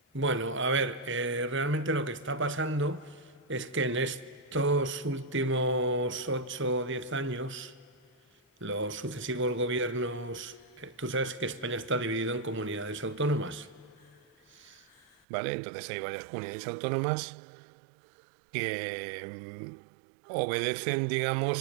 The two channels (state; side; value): drops out; left; at 15.2 s